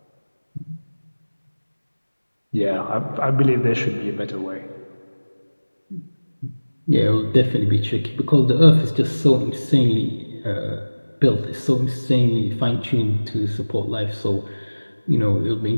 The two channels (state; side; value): inverted; both; correlation -1.00